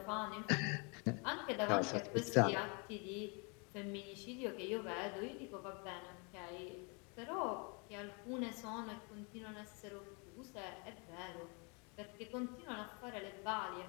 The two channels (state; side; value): quieter; right; 33.2 dB